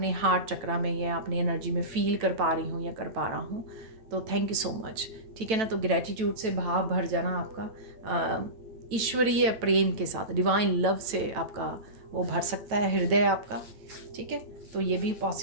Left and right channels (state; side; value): late; left; 9.1 ms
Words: हार्ट चक्रा में या अपनी एनर्जी में फील कर पा रही हूँ या कर पा रहा हूँ, तो थैंक यू सो मच। ठीक है ना, तो ग्रेटिट्यूड से भाव भर जाना आपका, ईश्वरीय प्रेम के साथ, डिवाइन लव से आपका वो भर सकता है हृदय आपका। ठीक है, तो ये भी